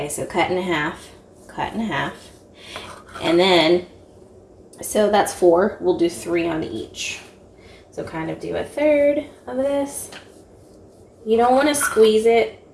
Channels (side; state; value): both; identical; correlation 1.00